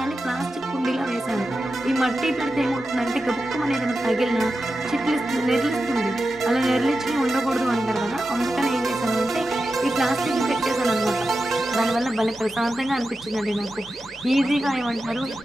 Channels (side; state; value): both; normal; correlation 0.91